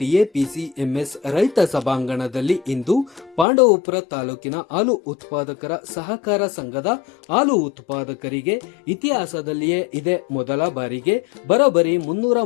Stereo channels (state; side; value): drops out; right; at 3.5 s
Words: ರೈತ ಸಭಾಂಗಣದಲ್ಲಿ ಇಂದು ಪಾಂಡವಪುರ ತಾಲೂಕಿನ ಹಾಲು ಉತ್ಪಾದಕರ ಸಹಕಾರ ಸಂಘದ ಹಾಲು ಉತ್ಪಾದಕರಿಗೆ ಇತಿಹಾಸದಲ್ಲಿಯೇ ಇದೇ ಮೊದಲ ಬಾರಿಗೆ ಬರೋಬ್ಬರಿ